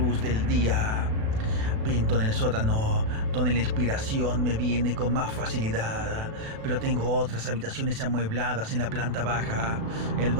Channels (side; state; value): left; late; 36 ms